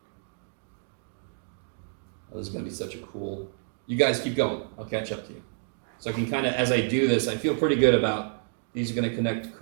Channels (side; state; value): left; silent; 59 dB below the other